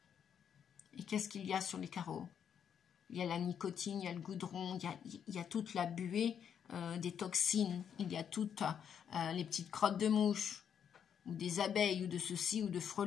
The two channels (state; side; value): quieter; right; 8.2 dB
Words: Et qu'est-ce qu'il y a sur les carreaux? Il y a la nicotine, il y a le goudron, il y a toute la buée des toxines, il y a toutes les petites crottes de mouches, ou des abeilles, ou de ceci, ou de